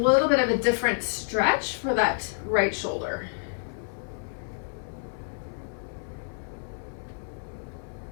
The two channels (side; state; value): right; silent; digital silence